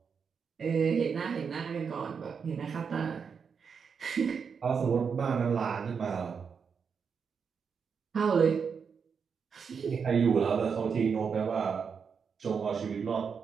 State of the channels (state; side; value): quieter; left; 6.2 dB